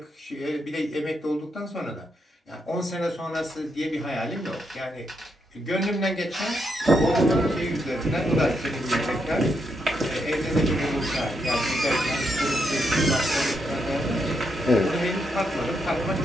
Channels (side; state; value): both; normal; correlation 0.80